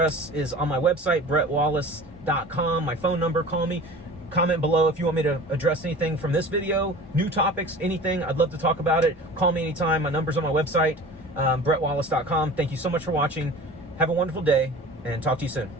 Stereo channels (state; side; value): normal; both; correlation 0.40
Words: is on my website, brettwallace.com. My phone number, call me. Comment below if you want me to address anything from this video, new topics, anything. I'd love to talk about it. Call me anytime. My number's on my website, brettwallace.com. Thank you so much for watching. Have a wonderful day, and talk to you soon.